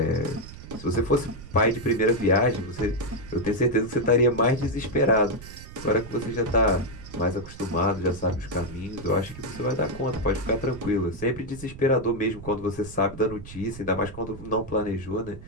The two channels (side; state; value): right; noise; rumble, 14 dB below the sound